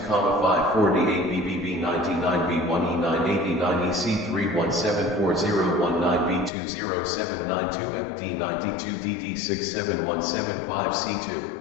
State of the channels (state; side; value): drops out; right; at 6.5 s